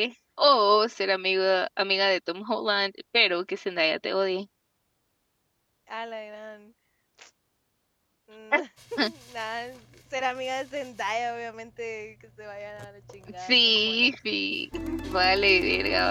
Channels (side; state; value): both; identical; correlation 1.00